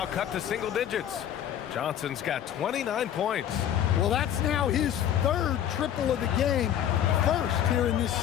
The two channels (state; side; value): quieter; right; 10.4 dB